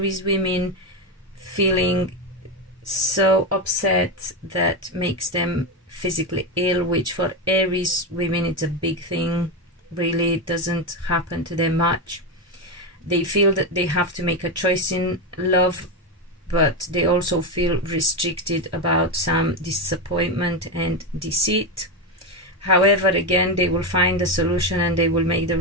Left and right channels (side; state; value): both; normal; correlation 0.11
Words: women feeling so upset that makes them physically ill, which for Aries women it's a big thing. Really, it doesn't happen to them much. They feel that they have to make a choice in love, but they also feel restricted about some disappointment and deceit. However, again, they will find a solution and they will make the